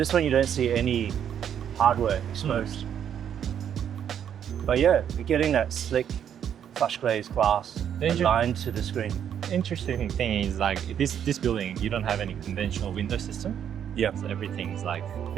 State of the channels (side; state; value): left; quieter; 9.1 dB